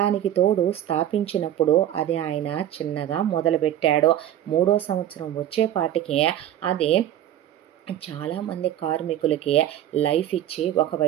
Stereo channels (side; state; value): left; quieter; 11.7 dB